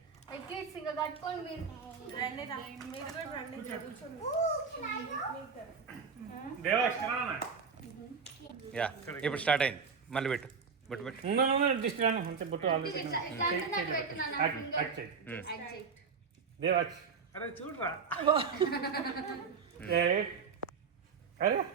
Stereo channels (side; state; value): left; quieter; 5.6 dB